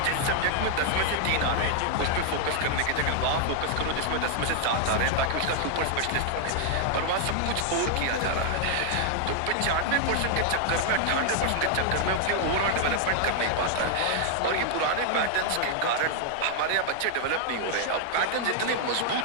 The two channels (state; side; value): different; both; correlation 0.00